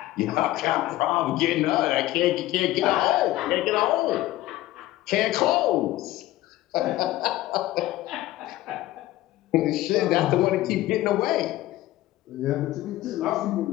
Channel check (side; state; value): right; quieter; 16.1 dB